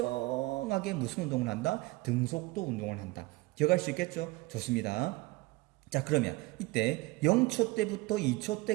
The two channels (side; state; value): left; quieter; 21.7 dB